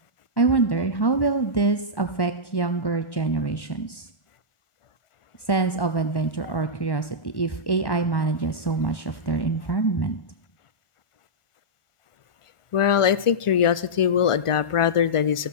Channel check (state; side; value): late; right; 1.4 ms